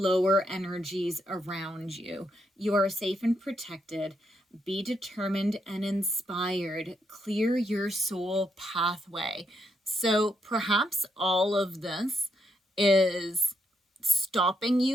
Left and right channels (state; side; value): normal; both; correlation 0.79